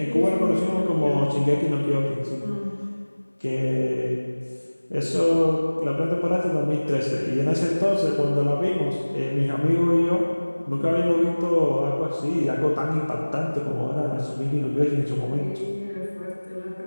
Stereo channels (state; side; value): inverted; both; correlation -1.00